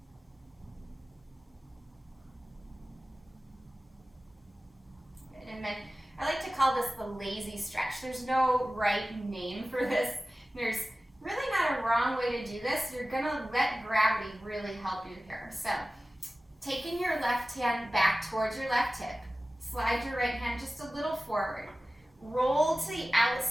And then I like to call this the lazy stretch. There's no right name for this. There's really not a wrong way to do this. You're gonna let gravity really help you here. So, taking your left hand back towards your left hip, slide your right hand just a little forward. Roll to the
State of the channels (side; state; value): both; normal; correlation 0.96